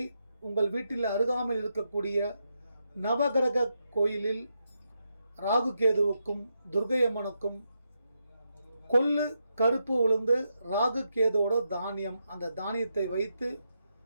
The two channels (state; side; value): inverted; both; correlation -0.83